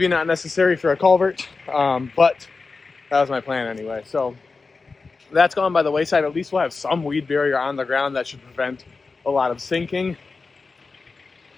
not necessary for a culvert, but that was my plan anyway. So that's gone by the wayside. At least we'll have some weed barrier on the ground that should prevent a lot of sinking.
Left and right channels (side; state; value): right; quieter; 4.2 dB